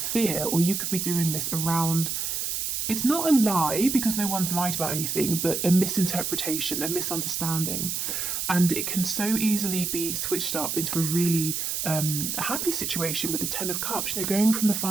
or you could be doing this around, it's not a lie because no one's lied about anything, but a misinterpretation, a misunderstanding. And it can so easily be switched up into a really happy situation with the Ten of Cups. You know, going from the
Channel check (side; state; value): right; noise; hiss, 2 dB below the sound